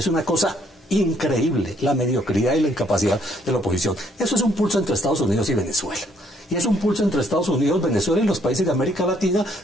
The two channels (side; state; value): both; normal; correlation 0.67